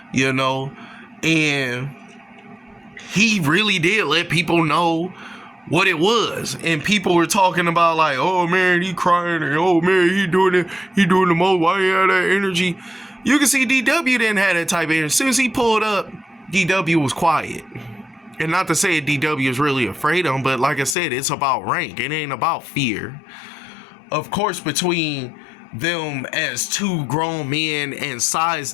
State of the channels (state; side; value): drops out; right; at 21.0 s